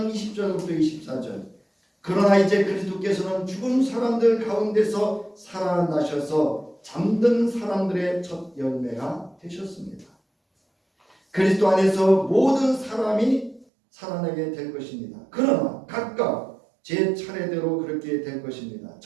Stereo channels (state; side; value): drops out; left; at 13.7 s